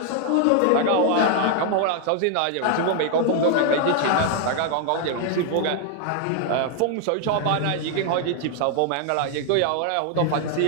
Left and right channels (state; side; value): different; both; correlation 0.00